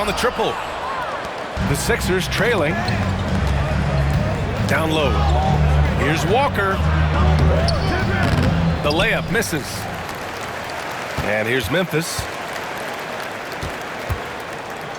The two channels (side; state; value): both; identical; correlation 1.00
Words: the triple. The Sixers trailing. Down low. Here's Walker. The layup misses. And here's Memphis.